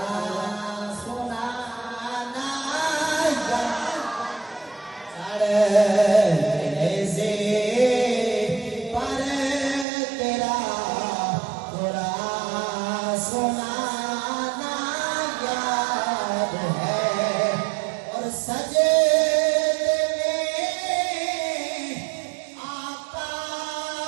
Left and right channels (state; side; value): drops out; left; at 9.9 s